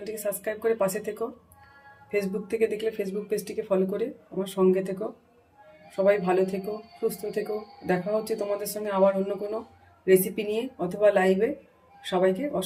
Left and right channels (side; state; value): both; identical; correlation 1.00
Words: সাবস্ক্রাইব করে পাশে থেকো। ফেসবুক থেকে দেখলে ফেসবুক পেজটিকে ফলো করে আমার সঙ্গে থেকো। সবাই ভালো থেকো, সুস্থ থেকো। দেখা হচ্ছে তোমাদের সঙ্গে আবার অন্য কোনো রেসিপি নিয়ে অথবা লাইভে। সবাইকে